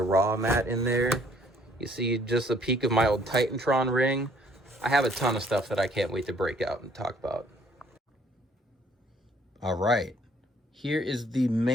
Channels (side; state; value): both; normal; correlation 0.61